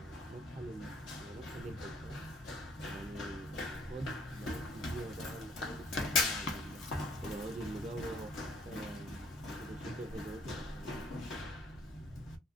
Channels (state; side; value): normal; both; correlation 0.61